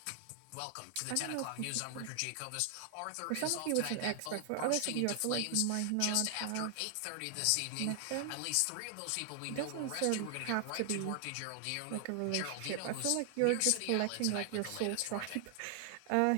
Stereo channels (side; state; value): both; different; correlation 0.00